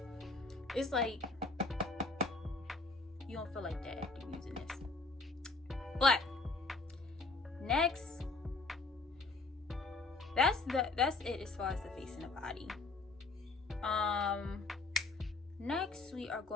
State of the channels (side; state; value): right; quieter; 3.6 dB